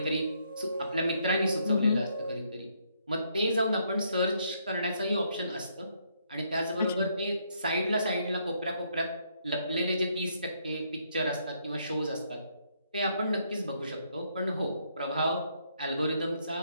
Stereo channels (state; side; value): inverted; both; correlation -0.73